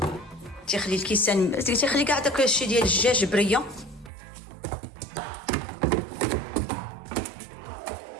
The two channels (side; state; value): left; drops out; at 4.1 s